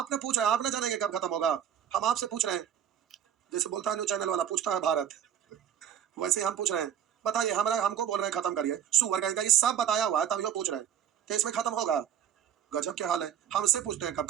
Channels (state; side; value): quieter; left; 9.4 dB